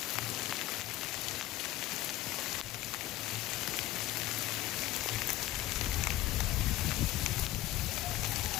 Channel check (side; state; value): right; quieter; 15.5 dB